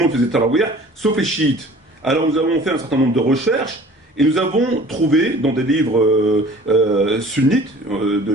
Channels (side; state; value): both; normal; correlation 0.47